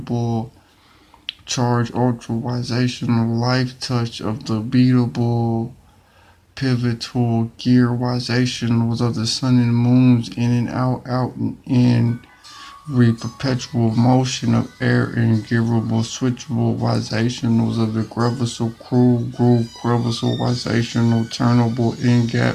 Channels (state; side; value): identical; both; correlation 1.00